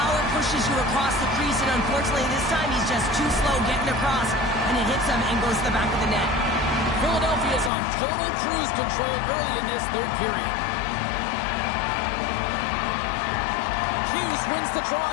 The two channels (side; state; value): right; drops out; at 7.7 s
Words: pushes you across the crease, and unfortunately this time he's just too slow getting across, and it hits him and goes to the back of the net. Philadelphia's on total cruise control early in this third period. Hughes wins the draw